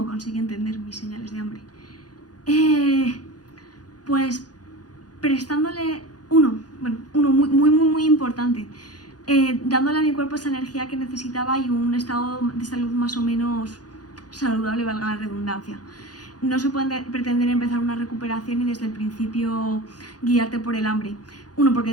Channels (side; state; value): right; late; 0.69 ms